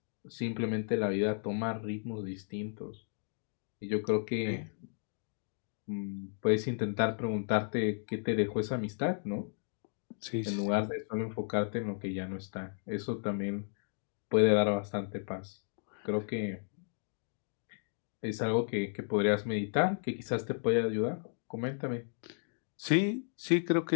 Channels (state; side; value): silent; right; digital silence